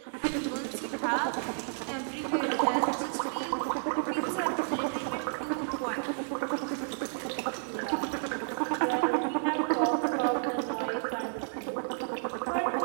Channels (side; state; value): left; silent; digital silence